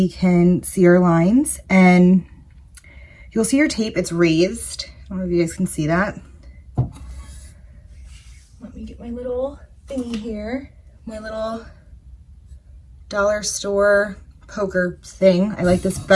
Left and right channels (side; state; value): both; identical; correlation 1.00